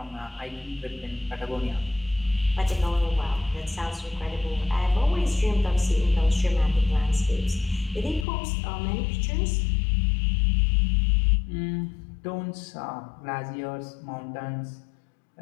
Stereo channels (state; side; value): drops out; right; at 8.2 s